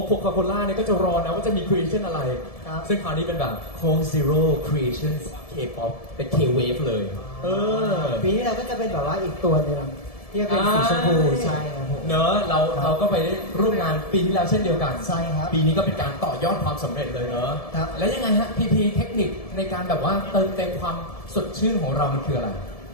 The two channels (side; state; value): right; late; 1.7 ms